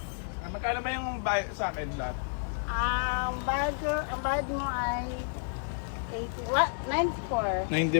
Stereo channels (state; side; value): silent; right; digital silence